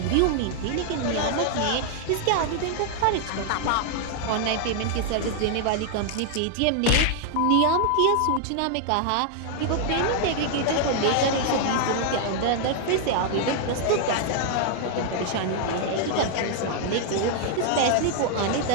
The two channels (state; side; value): different; both; correlation 0.00